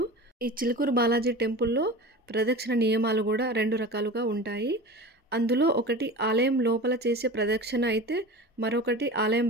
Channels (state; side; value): normal; both; correlation 0.33